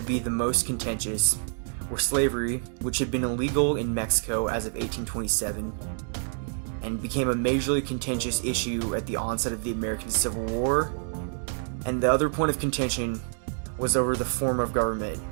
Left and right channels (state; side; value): silent; left; 60 dB below the other